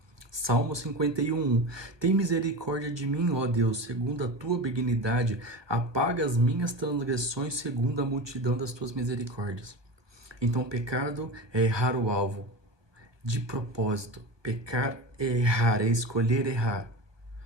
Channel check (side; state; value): left; late; 1.2 ms